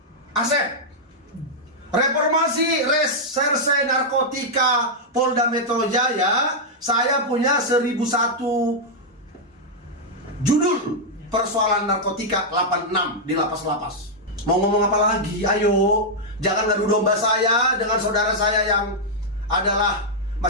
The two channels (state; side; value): normal; both; correlation -0.05